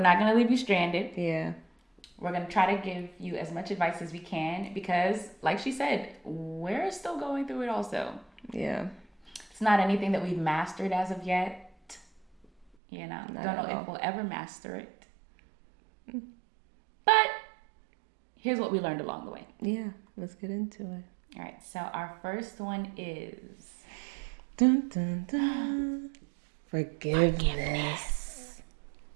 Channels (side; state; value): left; drops out; at 12.7 s